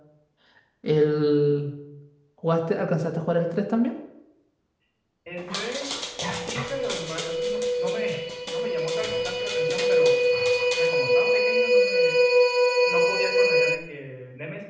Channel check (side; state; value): both; identical; correlation 1.00